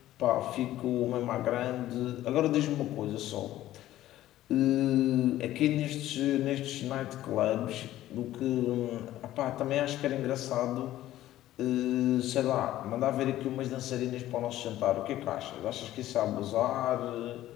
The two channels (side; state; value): right; quieter; 14.2 dB